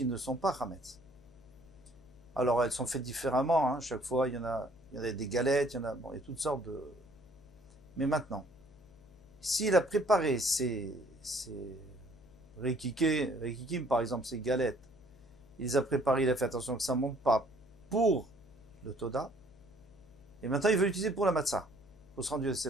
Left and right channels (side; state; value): left; noise; hum, 26 dB below the sound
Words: ne sont pas chametz. Alors elles sont faites différemment, chaque fois il y en a des galettes, il y a toutes sortes de... Mais maintenant, s'il a préparé ses rekikim par exemple, ses galettes, il les a préparées, il a fait attention que ça ne monte pas pour le toda, et maintenant il veut l'utiliser pour la matzah, pour se rendre c'est